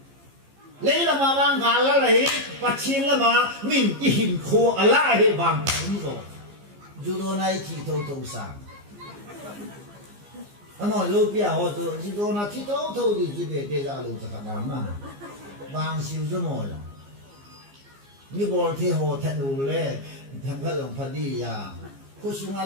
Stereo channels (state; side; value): late; left; 15 ms